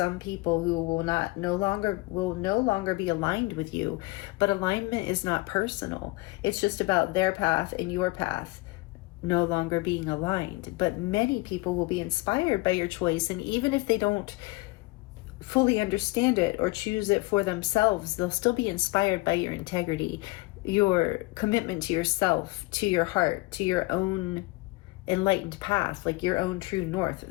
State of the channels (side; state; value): right; quieter; 23.1 dB